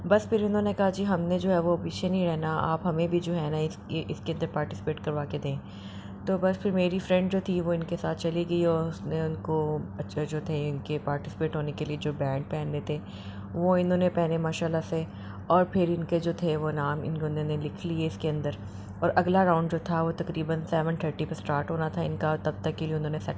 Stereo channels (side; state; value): both; identical; correlation 1.00